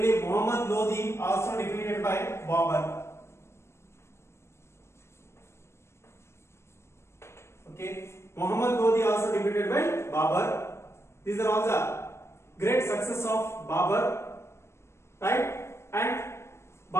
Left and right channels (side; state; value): right; late; 0.13 ms